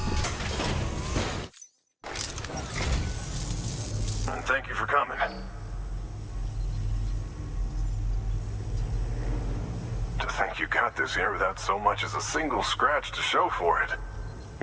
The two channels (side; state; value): both; identical; correlation 1.00